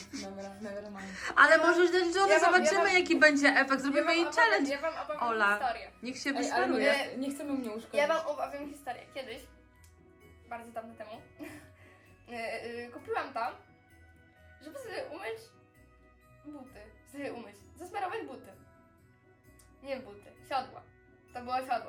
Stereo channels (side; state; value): both; identical; correlation 1.00